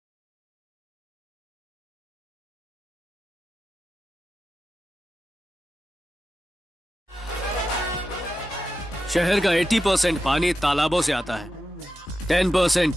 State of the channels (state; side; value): normal; both; correlation 0.91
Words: शहर का 80% पानी तालाबों से आता है, 10%